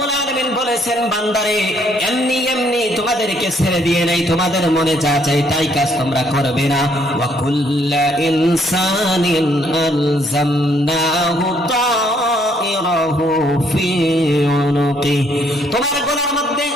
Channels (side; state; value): both; normal; correlation 0.68